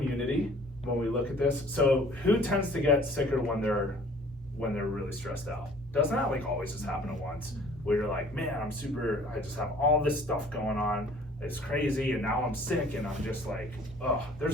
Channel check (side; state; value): both; normal; correlation 0.53